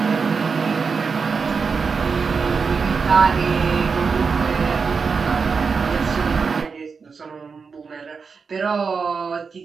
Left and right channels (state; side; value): quieter; left; 5.3 dB